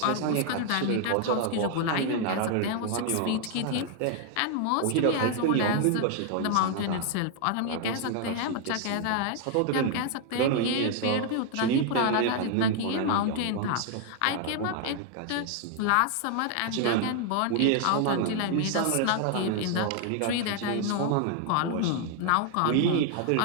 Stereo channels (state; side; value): different; both; correlation 0.00